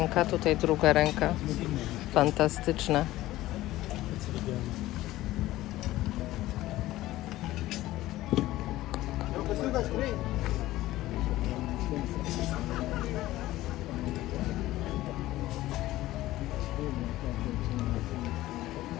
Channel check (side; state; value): right; quieter; 16.2 dB